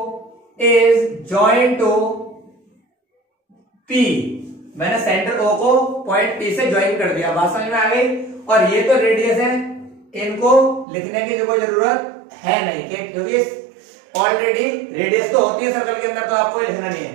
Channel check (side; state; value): left; drops out; at 10.9 s